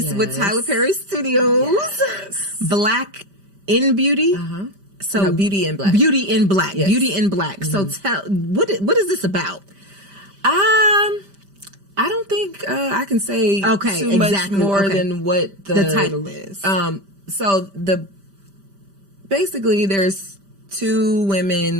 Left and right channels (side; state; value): left; late; 5.1 ms